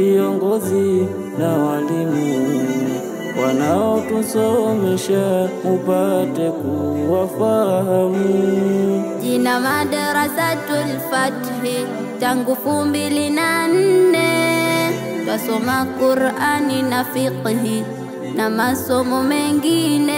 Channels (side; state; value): both; identical; correlation 1.00